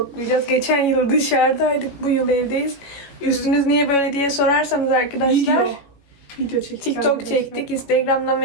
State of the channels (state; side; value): late; right; 18 ms